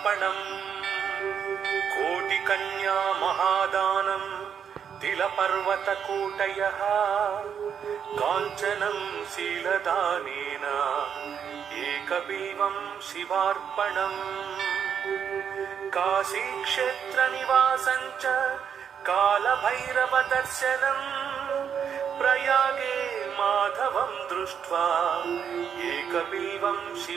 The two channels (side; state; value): left; quieter; 7.7 dB